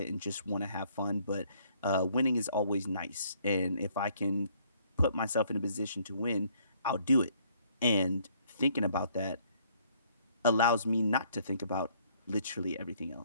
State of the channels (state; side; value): inverted; both; correlation -0.64